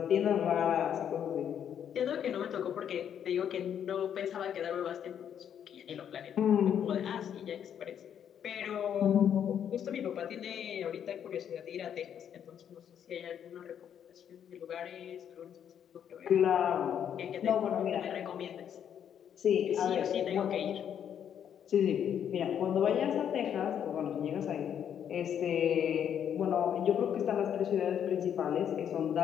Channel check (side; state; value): right; quieter; 9.0 dB